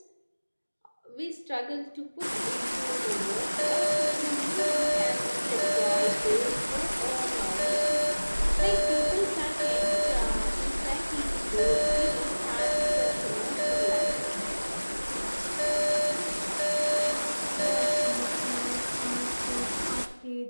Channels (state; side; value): inverted; both; correlation -1.00